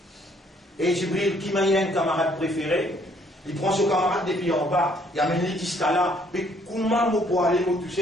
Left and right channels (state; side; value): normal; both; correlation 0.65